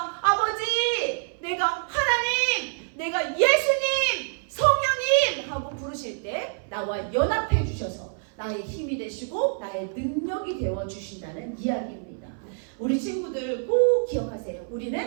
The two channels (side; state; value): left; silent; 59 dB below the other